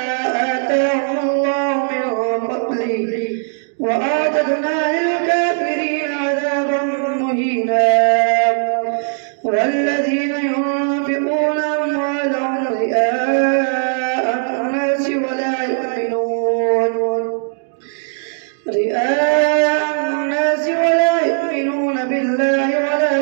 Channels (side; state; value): left; silent; 64 dB below the other